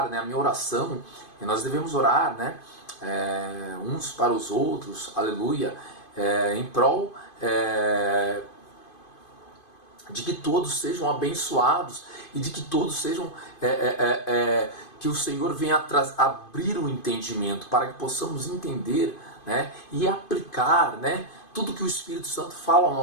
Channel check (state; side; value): late; right; 2.5 ms